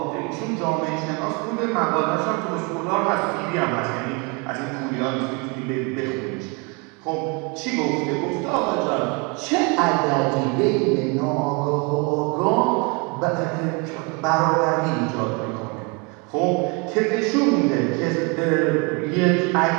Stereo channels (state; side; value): quieter; left; 31.2 dB